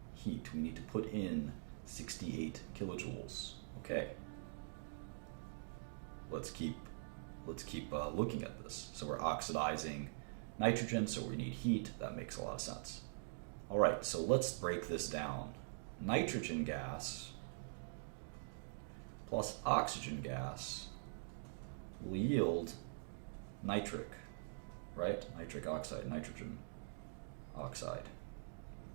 heat. We need to put in 68 kilojoules. Okay. Let's keep looking at this. So we're oxidizing nitrogen, so we need heat. That makes a lot of sense. All right, so let's break this down. Nitrogen gas plus oxygen gas will yield nitric, right? Nitric oxide, nitrogen oxide,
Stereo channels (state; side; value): silent; left; digital silence